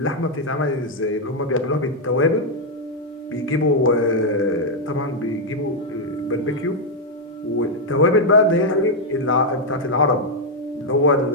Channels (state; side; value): normal; both; correlation -0.01